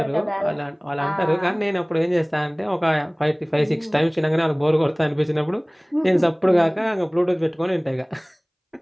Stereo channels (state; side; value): identical; both; correlation 1.00